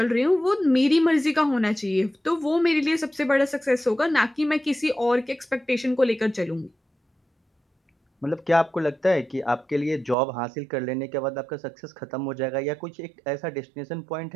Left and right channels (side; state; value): left; drops out; at 10.2 s